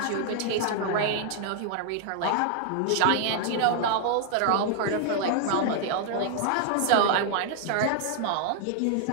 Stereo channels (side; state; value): both; different; correlation 0.00